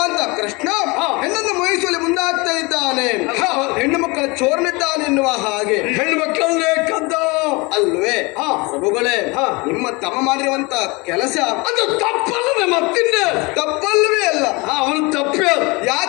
ಅಂತ ಕೃಷ್ಣ ಹೆಣ್ಣನ್ನು ಮೋಹಿಸುವಲ್ಲಿ ಮುಂದಾಗ್ತಾ ಇದ್ದಾನೆ, ಹೆಣ್ಣು ಮಕ್ಕಳ ಚೋರನಿದ್ದಾನೆ ಎನ್ನುವ ಹಾಗೆ. ಹೆಣ್ಣು ಮಕ್ಕಳನ್ನೇ ಕದ್ದ ಅಲ್ವೇ ಪ್ರಭುಗಳೇ? ನಿಮ್ಮ ತಮ್ಮ ಮಾಡಿರುವಂತ ಕೆಲಸ ಅದು ತಪ್ಪಲ್ಲದೆ ಮತ್ತಿಂದ ತಪ್ಪಲ್ವೇ ಅಲ್ಲ. ಅವನು ತಪ್ಪೇ.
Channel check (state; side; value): quieter; right; 26.3 dB